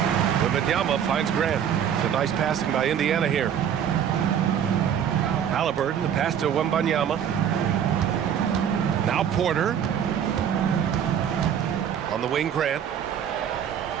Wembanyama finds Grant. It's a nice passing by Indiana here. Halliburton, the pass to Wembanyama. Now Porter. On the wing, Grant.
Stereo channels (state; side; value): quieter; left; 8.8 dB